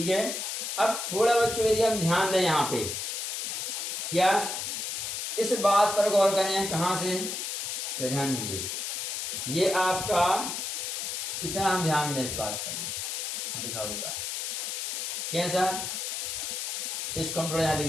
है। अब थोड़ा बच्चों यदि हम ध्यान दें यहाँ पे, क्या इस बात पर गौर करें, कहाँ से? तो ध्यान दीजिए, ये आपका इतना हम ध्यान दें इस बात पर लिखा हुआ है कैसा, इसको हम थोड़ा यहाँ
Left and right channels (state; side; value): noise; left; hiss, 3 dB below the sound